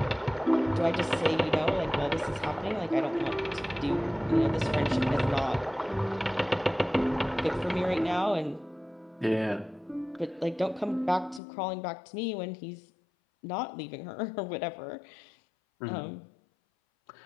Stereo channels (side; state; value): right; drops out; at 11.4 s